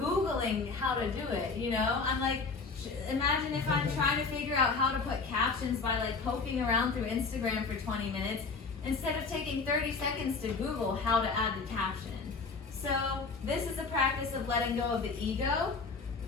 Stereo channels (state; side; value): quieter; right; 4.4 dB